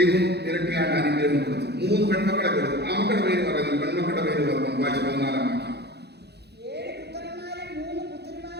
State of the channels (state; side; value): late; left; 0.48 ms